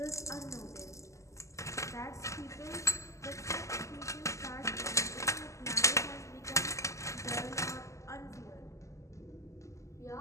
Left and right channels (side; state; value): right; late; 0.15 ms